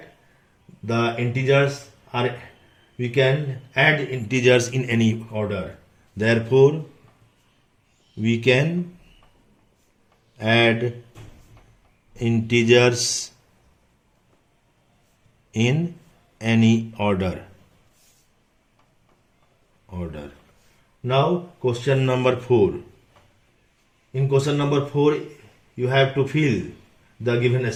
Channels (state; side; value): identical; both; correlation 1.00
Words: the integers are, we can add integers in any order. Therefore, we can add integers in any order. Now, question number 4. In question number 4, you have to fill the given